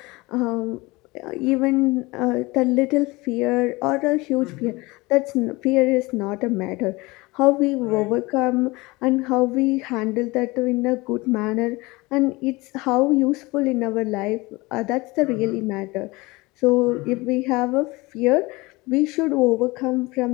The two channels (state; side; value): quieter; right; 22.9 dB